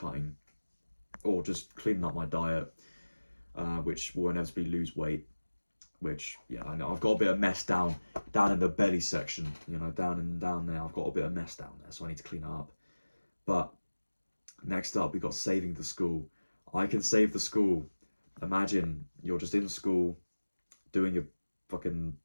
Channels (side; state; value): both; inverted; correlation -1.00